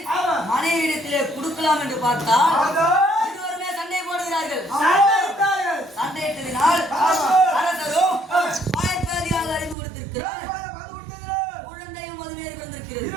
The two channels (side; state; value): left; drops out; at 9.8 s